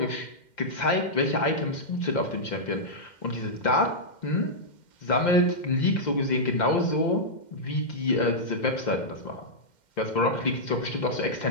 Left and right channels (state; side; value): late; right; 2.1 ms